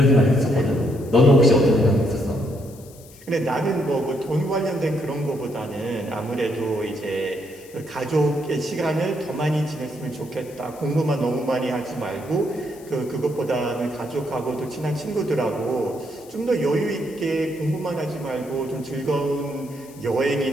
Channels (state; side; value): noise; left; hiss, 23 dB below the sound